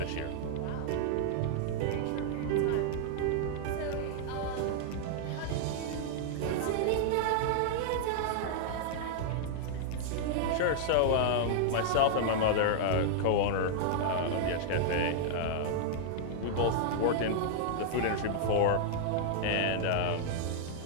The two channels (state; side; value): different; both; correlation -0.01